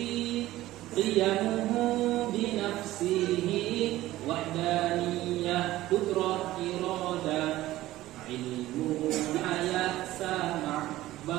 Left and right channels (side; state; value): left; quieter; 15.9 dB